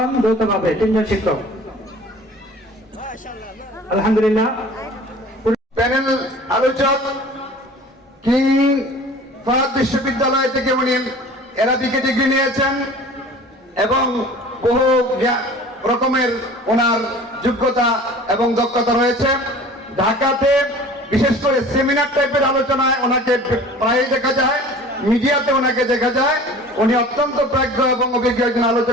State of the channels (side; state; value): both; normal; correlation 0.44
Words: যৌথভাবে, 3 জন শিক্ষক আলহামদুলিল্লাহ। প্যানেল আলোচক কিং ফাহাদ বিশ্ববিদ্যালয় থেকে উনি এরা বিকে ডিগ্রি নিয়েছেন এবং বহু রকমের ওনার যোগ্যতা এবং দক্ষতা রয়েছে। ঢাকাতে বিশেষ করে সেমিনার টাইপের আলোচনায় ওনাকে প্রায় দেখা যায়, মিডিয়াতে ওনাকে দেখা যায়। উনি অত্যন্ত প্রাজ্ঞ এবং অভিজ্ঞ একজন